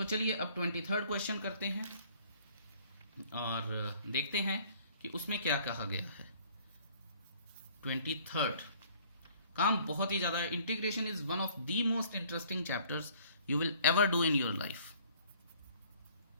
चलिए अब 23rd क्वेश्चन करते हैं और देखते हैं कि उसमें क्या कहा गया है। 23rd काम बहुत ही ज्यादा, integration is one of the most interesting chapters you will ever do in your life.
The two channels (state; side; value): inverted; both; correlation -0.56